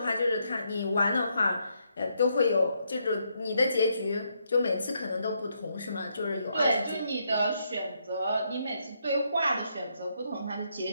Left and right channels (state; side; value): inverted; both; correlation -0.77